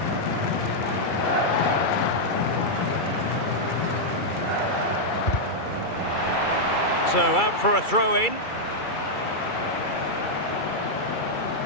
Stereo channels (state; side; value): late; right; 2.3 ms